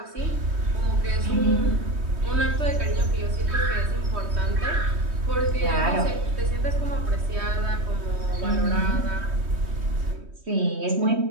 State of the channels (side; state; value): left; late; 3.2 ms